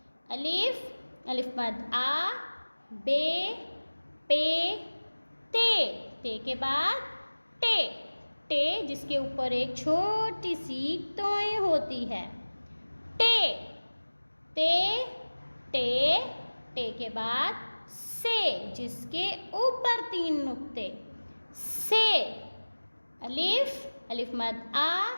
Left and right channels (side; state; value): both; inverted; correlation -1.00